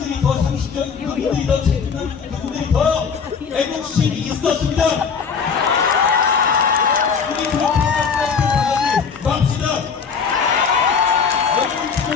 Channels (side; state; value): right; quieter; 6.0 dB